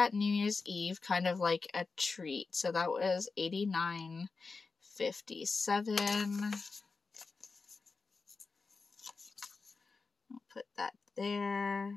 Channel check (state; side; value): quieter; right; 4.3 dB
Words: New Year's Eve kind of like a treat, so that was $89.57. I'll put that